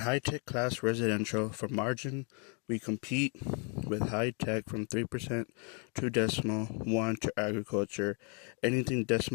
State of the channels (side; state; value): right; quieter; 37.7 dB